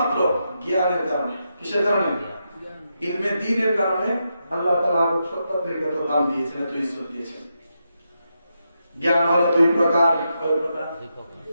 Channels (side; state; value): both; inverted; correlation -0.84